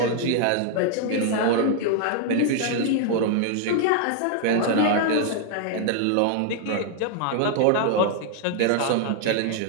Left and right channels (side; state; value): both; different; correlation 0.00